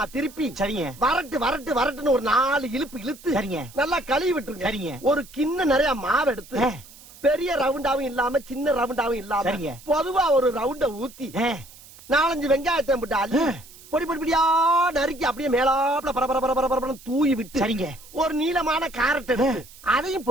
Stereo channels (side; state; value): right; noise; hiss, 21 dB below the sound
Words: திருப்பி சரிங்க, வரட்டுன்னு ஒரு 4 இழுப்பு இழுத்து சரிங்க, நல்லா கழுவி விட்டுருங்க. சரிங்க. ஒரு கிண்ண நிறைய மாவு எடுத்து பெரிய ரவுண்டாவும் இல்லாம சின்ன ரவுண்டாவும் இல்லாம சரிங்க, பொதுவா ஒரு ரவுண்ட ஊத்தி 4-5 வெங்காயத்தை போட்டு அள்ளி பொடி பொடியா நறுக்கி அப்படியே மேலாப்ல பரபர தூவி விட்டு, சரிங்க, ஒரு நீளமான கேரட் எடுத்து அதையும்